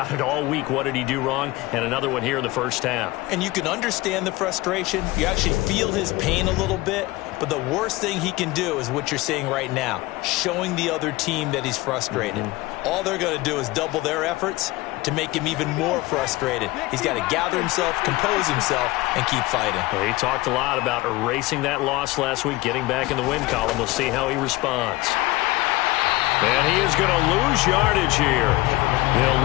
it all week. What did he do wrong? And another one here in the first half. And you can understand the frustration. You actually feel his pain a little bit. But the worst thing he can do is what you're seeing right now, showing the other team that he's frustrated. All they're going to do is double their efforts to make him even more frustrated. He's got to gather himself, compose himself, and keep fighting. Well, he talked a lot about erasing that loss last week, getting back in the win column. We'll see how he responds. And he is going to lose yardage here.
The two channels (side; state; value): right; quieter; 20.0 dB